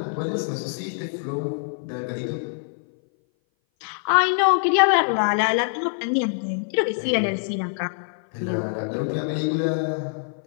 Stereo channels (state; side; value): silent; right; 58 dB below the other